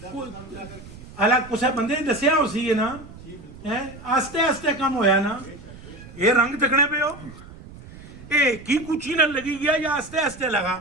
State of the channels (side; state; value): right; noise; rumble, 17 dB below the sound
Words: ਹਾਲਾ ਕੁਛ ਬੰਦੇ ਨੇ ਦੱਸਿਆ ਉਸੀ ਹੈ ਨਾ ਹੈ ਆਸਤੇ ਆਸਤੇ ਕੰਮ ਹੋਇਆ ਨਾ ਇਹ ਰੰਗ ਤਕਣੇ ਪਏ ਹੋ ਇਹ ਕੀ ਕੁਚੀ ਨਾਲ ਲਗੀ ਗਿਆ ਜਾਂ ਆਸਤੇ ਆਸਤੇ ਲਗਾ